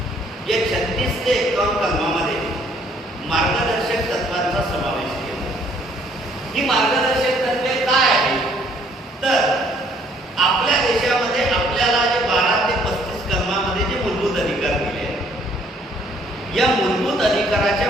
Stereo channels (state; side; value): normal; both; correlation 0.63